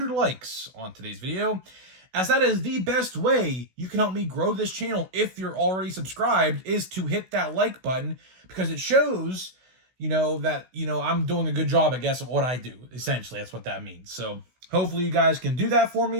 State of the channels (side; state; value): left; late; 16 ms